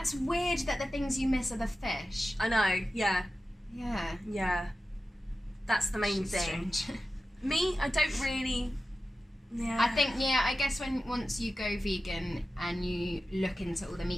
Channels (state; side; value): normal; both; correlation 0.94